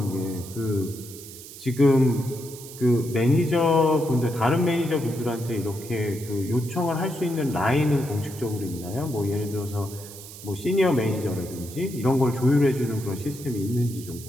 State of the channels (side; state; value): right; noise; hiss, 15 dB below the sound